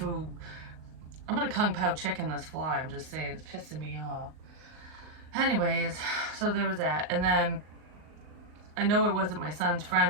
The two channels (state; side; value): late; left; 39 ms